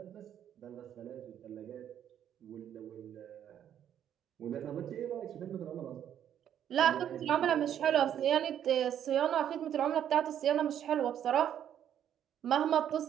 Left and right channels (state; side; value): quieter; left; 9.9 dB